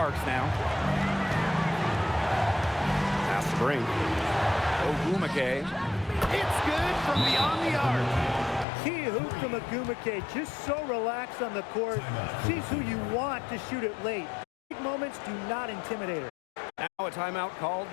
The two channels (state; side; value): drops out; right; at 8.7 s